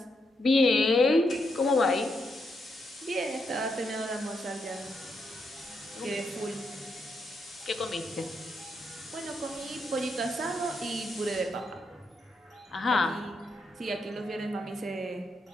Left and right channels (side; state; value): both; normal; correlation 0.80